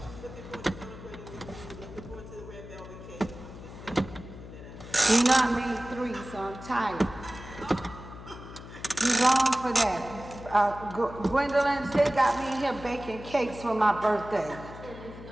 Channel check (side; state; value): left; noise; hum, 14 dB below the sound